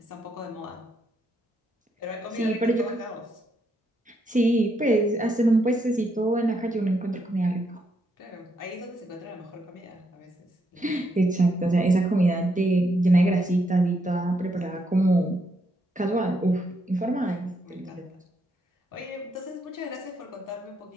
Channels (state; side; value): normal; both; correlation 0.77